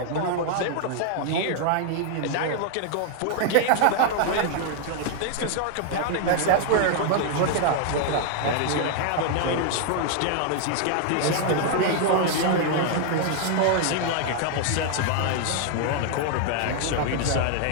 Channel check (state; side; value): different; both; correlation 0.00